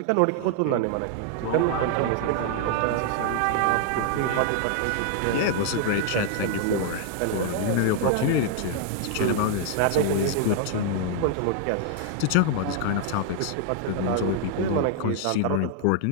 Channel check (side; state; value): both; different; correlation 0.00